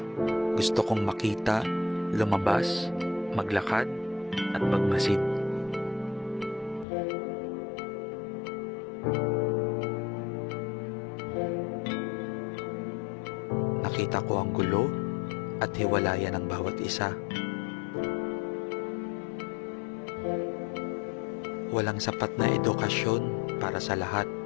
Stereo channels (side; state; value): right; drops out; at 6.9 s